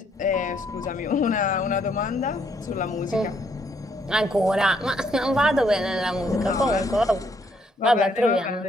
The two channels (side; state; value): both; normal; correlation 0.70